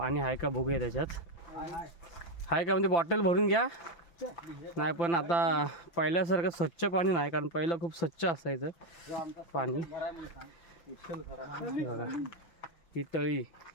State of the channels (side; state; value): right; late; 5.9 ms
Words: आहे का बघूया त्याच्यात. आहे का म्हणजे बॉटल भरून घ्या. नाही पण आता पहिल्यासारखं स्वच्छ पाणी नाही, कारण पहिलं खूप स्वच्छ असायचं पाणी. बघा ही तळी,